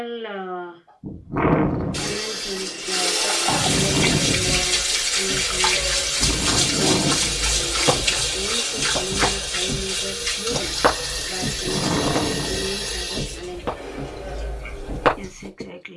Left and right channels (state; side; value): identical; both; correlation 1.00